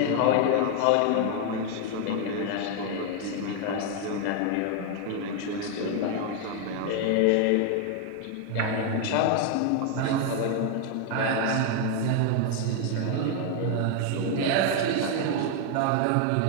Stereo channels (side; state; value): both; different; correlation 0.01